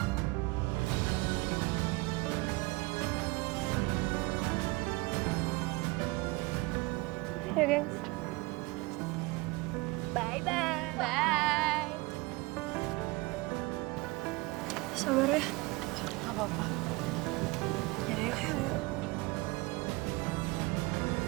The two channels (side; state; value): left; quieter; 23.3 dB